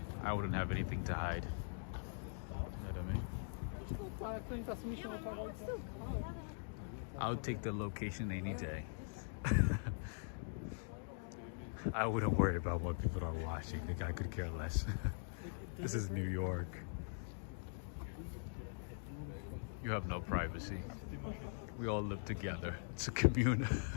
I wouldn't have anything to hide. You know what I mean? I would take the location any day. I wouldn't worry about what people are watching. Like, I could care less. This is New York. You have no privacy. We all live together. It's a commune.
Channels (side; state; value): right; silent; digital silence